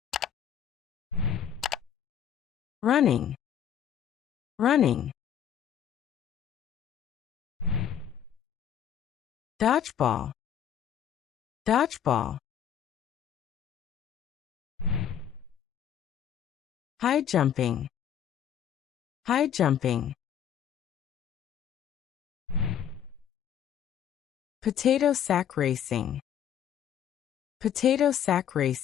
Running. Running. Dodgeball. Dodgeball. High jumping. High jumping. Potato sack racing. Potato sack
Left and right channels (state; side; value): quieter; right; 9.2 dB